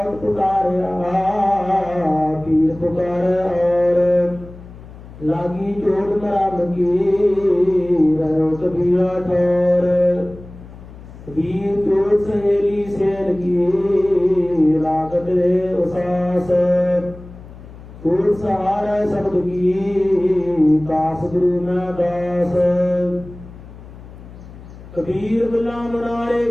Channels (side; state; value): left; noise; hum, 17 dB below the sound